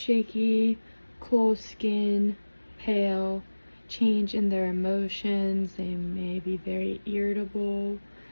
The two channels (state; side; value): inverted; both; correlation -1.00